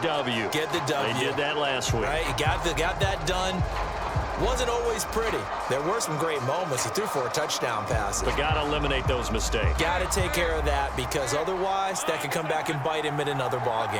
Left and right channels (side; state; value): both; identical; correlation 1.00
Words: Get the W. They did that last week. Right, you got that done. Wasn't always pretty. There were some great moments. He threw 4 touchdown passes. But got to eliminate those mistakes. Got to take care of that, because otherwise that could come back and bite him in another ball